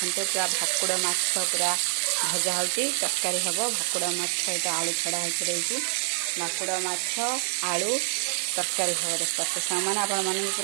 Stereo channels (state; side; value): silent; left; 61 dB below the other